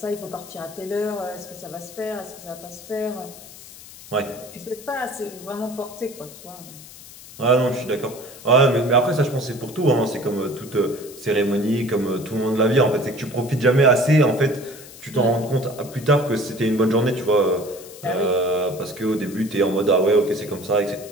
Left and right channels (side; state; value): left; noise; hiss, 18 dB below the sound